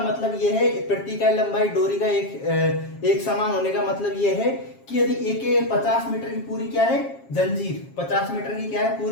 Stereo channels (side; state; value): right; late; 7.4 ms